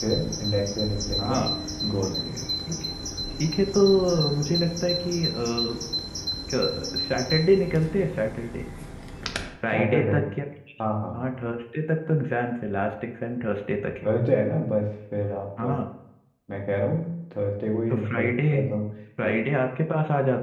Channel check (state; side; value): identical; both; correlation 1.00